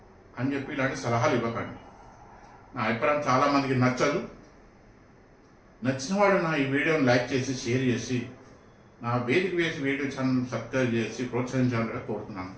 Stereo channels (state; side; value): identical; both; correlation 1.00